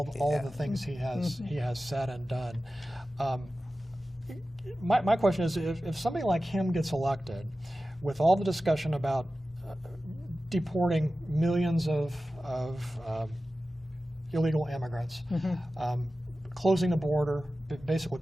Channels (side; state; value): both; normal; correlation 0.95